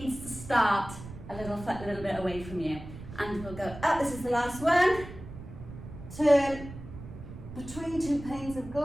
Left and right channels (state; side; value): noise; right; rumble, 13 dB below the sound